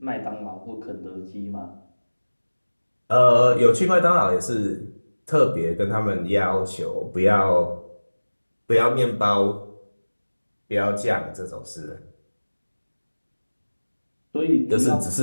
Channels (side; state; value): both; inverted; correlation -1.00